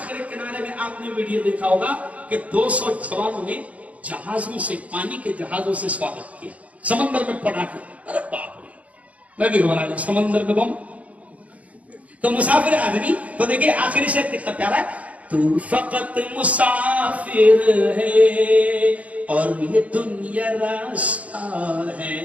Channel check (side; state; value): left; late; 0.068 ms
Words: کنارے میں آپ نے ویڈیو دیکھا ہوگا کہ 200 جوانوں نے جہازوں سے، پانی کے جہازوں سے سواگت کیا، سمندر میں پڑا کے، ارے باپ رے، میں بھی گھبرا گیا، سمندر میں بم۔ تو مسافر آدمی، تو دیکھیں آخری شعر کتنا پیارا ہے، تو فقط مسافر ہے اور یہ دنیا راستہ ہے،